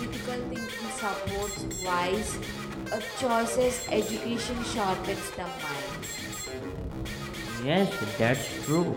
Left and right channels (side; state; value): both; identical; correlation 1.00